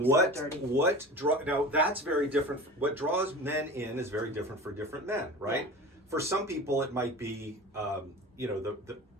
that's very different. What draws men in is very different for different men, right? Yeah. For some people, it might be,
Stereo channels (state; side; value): normal; both; correlation 0.35